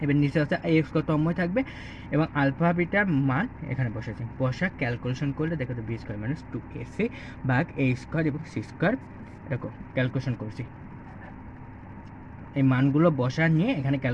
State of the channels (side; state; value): both; identical; correlation 1.00